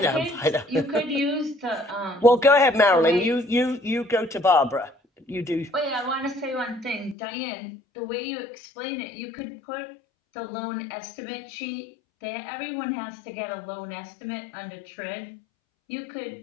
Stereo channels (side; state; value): right; drops out; at 7.2 s